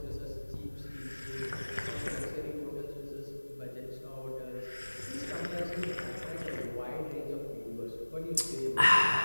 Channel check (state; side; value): inverted; both; correlation -1.00